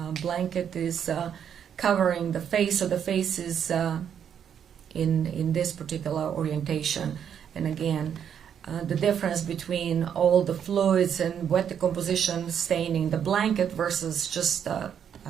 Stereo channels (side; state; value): left; quieter; 8.5 dB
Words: blanket is covering the face, so the face is in this particular orientation. And again, the difference between all the fluids and wet decomposition staining the blanket versus just